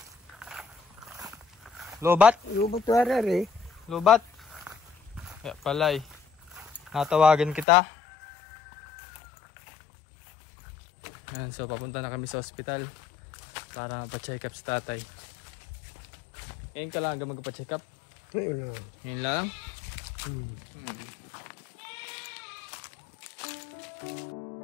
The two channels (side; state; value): right; drops out; at 7.7 s